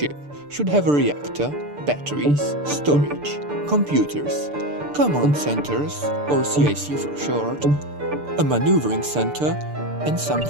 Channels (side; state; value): left; late; 6.8 ms